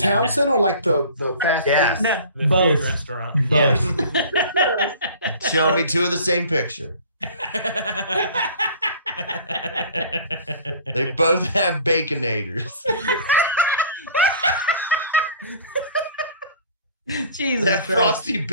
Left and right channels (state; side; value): inverted; both; correlation -0.46